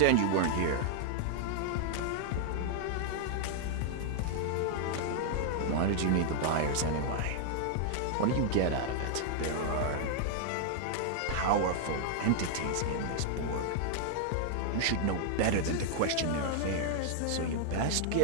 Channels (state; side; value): different; both; correlation 0.00